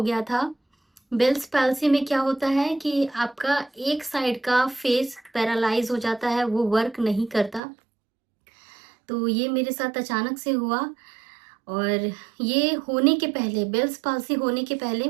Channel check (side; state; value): left; drops out; at 7.6 s